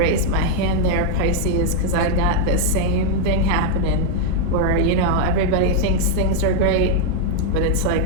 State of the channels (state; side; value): different; both; correlation 0.00